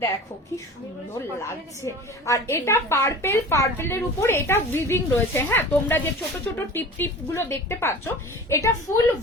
দেখো কি সুন্দর লাগছে। আর এটা পার্পেলের উপর এটা উইভিং রয়েছে, হ্যাঁ। তোমরা যে ছোট ছোট টিপ গুলো দেখতে পাচ্ছ, এটা ফুল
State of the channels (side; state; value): both; normal; correlation 0.38